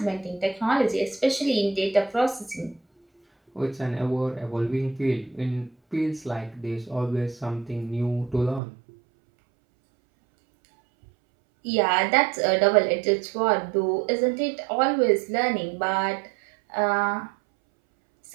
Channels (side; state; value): left; drops out; at 8.6 s